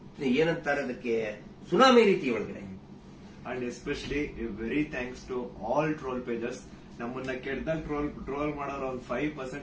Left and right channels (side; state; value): both; identical; correlation 1.00